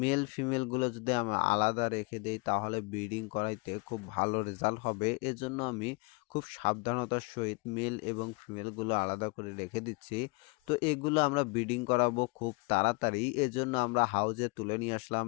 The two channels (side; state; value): right; quieter; 29.7 dB